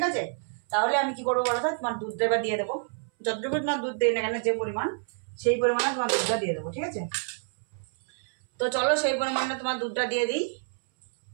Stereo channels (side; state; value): left; silent; 59 dB below the other